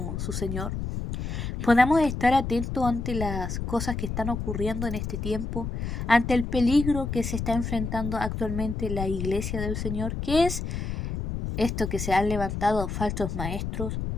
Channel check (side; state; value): left; noise; rumble, 4 dB below the sound